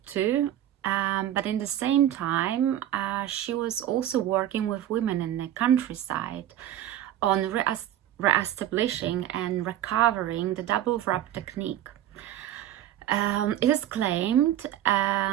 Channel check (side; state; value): left; quieter; 12.0 dB